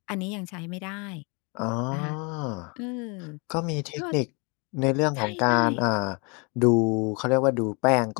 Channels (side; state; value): right; quieter; 32.0 dB